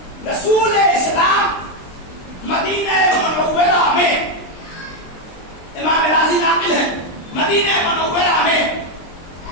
رسول اسلام مدینہ منورہ میں، امام راضی ناقل ہے، مدینہ منورہ میں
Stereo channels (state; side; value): late; right; 23 ms